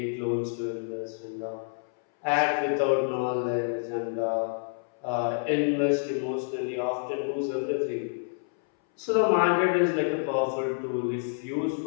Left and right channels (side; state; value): right; silent; 59 dB below the other